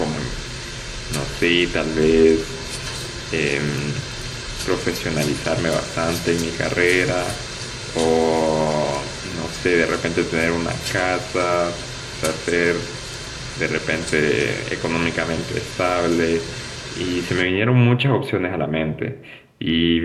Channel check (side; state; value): both; identical; correlation 1.00